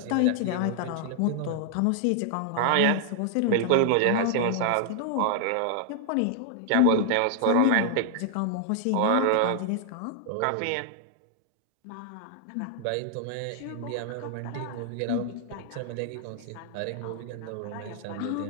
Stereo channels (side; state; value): both; different; correlation 0.00